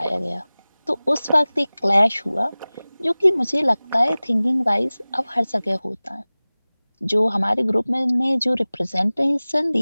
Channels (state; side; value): inverted; both; correlation -0.99